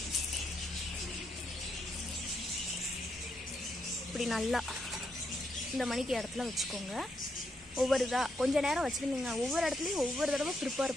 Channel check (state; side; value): normal; both; correlation 0.80